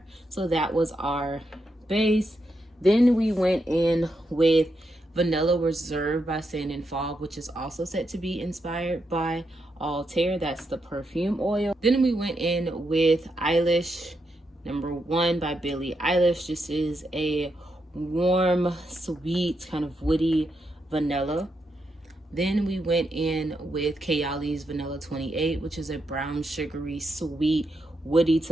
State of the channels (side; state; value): both; normal; correlation 0.83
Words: So that was our base. Then we went in with Vanilla Reserve by Sand and Fog, which is also said to be inspired by Altair. That's the perfume oil. Then we went in with Eilish Number 1 by Billie Eilish. This is a warm, sweet, kind of woody vanilla. Then we went in with Kayali's Vanilla 28, which is a brown, sugary, sweet, woody